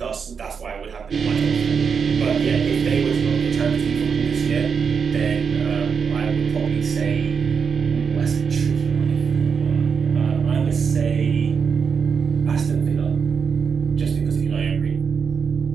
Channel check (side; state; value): left; quieter; 6.2 dB